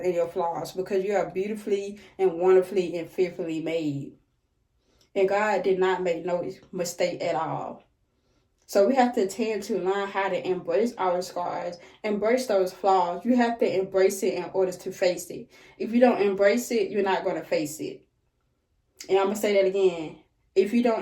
and your flaws, because you are beautifully and wonderfully and fearfully made. And God did not make no mistake at all. So we have to tend to learn how to embrace our scars, embrace those flaws. You have to embrace it in order to face it. If you don't embrace it, you're not going to face it. And I'm going to say that again. If you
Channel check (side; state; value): both; identical; correlation 1.00